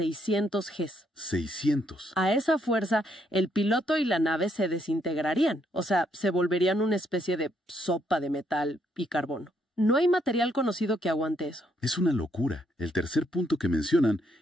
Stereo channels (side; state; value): both; normal; correlation 0.73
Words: Gs. 600. A esa fuerza, el piloto y la nave se desintegrarían, o sea, se volverían una especie de sopa de metal y carbono. No hay material conocido que aguante eso. Es una locura. El tercer punto que mencionan